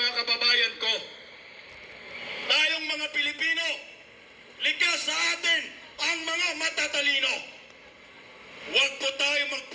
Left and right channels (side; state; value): both; identical; correlation 1.00